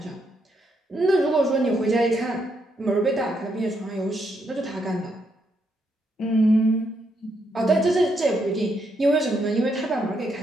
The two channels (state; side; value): normal; both; correlation 0.77